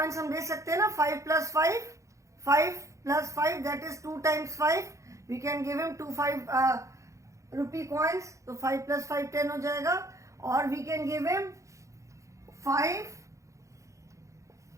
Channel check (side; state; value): left; late; 0.15 ms